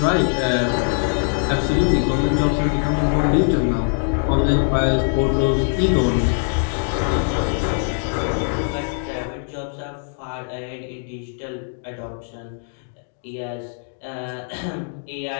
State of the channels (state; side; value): silent; right; 64 dB below the other